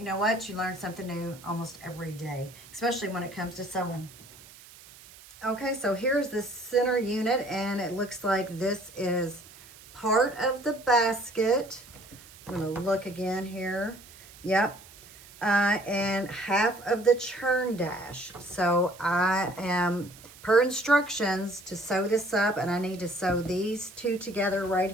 know what? You learn something new almost every day, especially when it comes to sewing. Okay, so here's the center unit, and it looks like this is part of the basket. I'm going to look again here. Yep. And half of the churn dash. So I am, per instructions, to sew this up, and I need to sew these two together right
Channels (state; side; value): noise; right; hiss, 21 dB below the sound